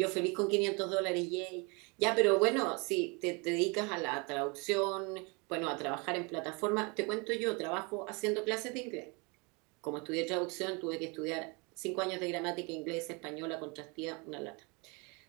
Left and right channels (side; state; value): left; quieter; 30.4 dB